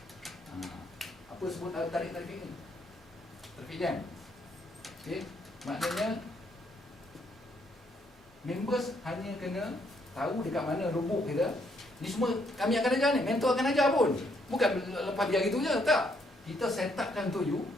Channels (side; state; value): both; normal; correlation 0.72